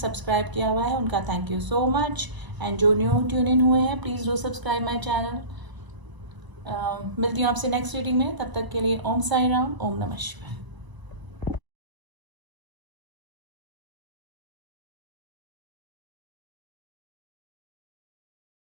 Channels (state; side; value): late; left; 1.0 ms